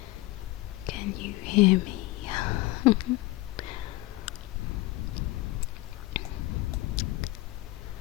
Can you hear me?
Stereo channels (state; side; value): quieter; right; 19.3 dB